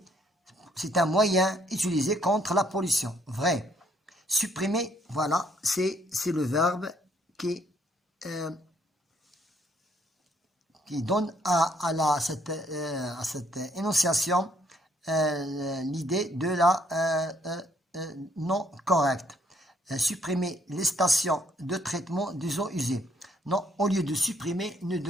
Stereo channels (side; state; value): both; normal; correlation 0.68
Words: C'est un moyen utilisé contre la pollution. Vrai. Supprimer, voilà, c'est le verbe qui donne à cette énonciation l'idée de la non correcte. Supprimer les stations de traitement des eaux usées. Non, au lieu de supprimer, nous